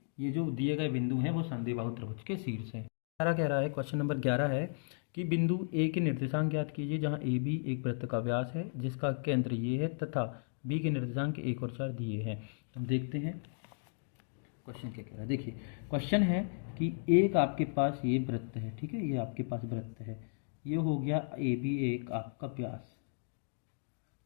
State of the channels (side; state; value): right; silent; digital silence